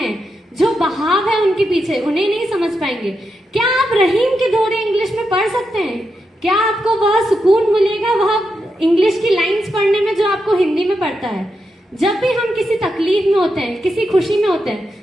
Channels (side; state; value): both; normal; correlation 0.86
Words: जो बहाव है उनके पीछे, उन्हें नहीं समझ पाएंगे। क्या आप रहीम के दोहे इंग्लिश में पढ़ सकते हैं? क्या आपको वह सुकून मिलेगा वह इंग्लिश की लाइंस पढ़ने में जो आपको हिंदी में पढ़ता है? जब भी हम किसी तकलीफ में होते हैं, किसी खुशी में होते